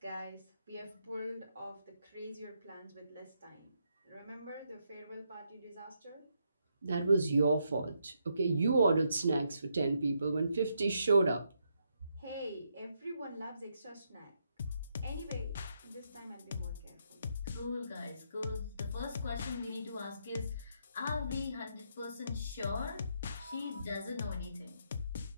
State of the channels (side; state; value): both; inverted; correlation -0.78